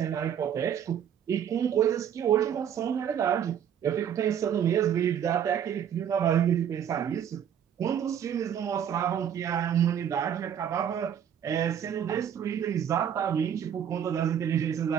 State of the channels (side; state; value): left; quieter; 9.0 dB